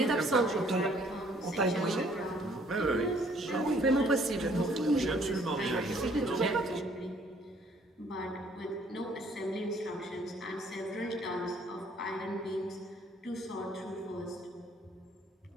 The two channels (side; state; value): both; normal; correlation 0.61